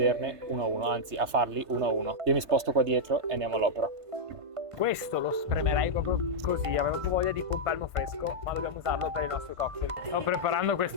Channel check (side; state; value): left; late; 1.5 ms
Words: uno a uno, anzi a farli uno a uno. Io mi sposto qua dietro e andiamo all'opera. Questo lo spremerei proprio così, avevo proprio voglia di pompelmo fresco, ma dobbiamo usarlo per i nostri cocktail. Sto preparando